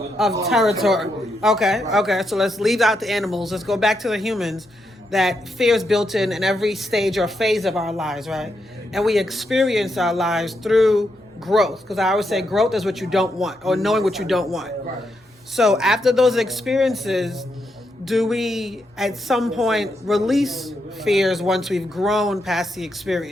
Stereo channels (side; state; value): both; normal; correlation 0.82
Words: Of territory. Okay. So let's leave out the animals. Let's go back to the humans. That fear is built in every stage or phase of our lives, right? And we experience our lives through growth. Because I always say growth is what you don't want, or knowing what you don't want. So after those experiences, do we at some point release fears once we've grown past the